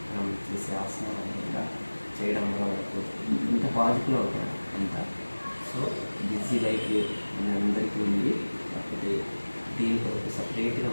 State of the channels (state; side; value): inverted; both; correlation -1.00